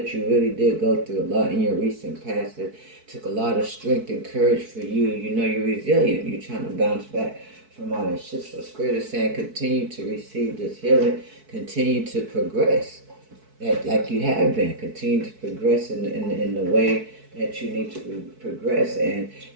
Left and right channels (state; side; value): late; left; 4.6 ms